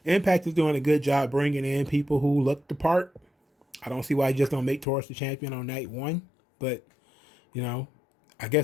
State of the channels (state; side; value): drops out; right; at 4.9 s